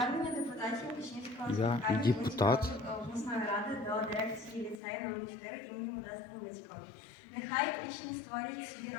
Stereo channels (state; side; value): drops out; right; at 4.8 s